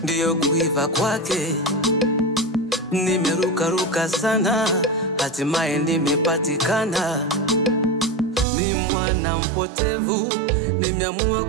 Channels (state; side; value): drops out; left; at 8.5 s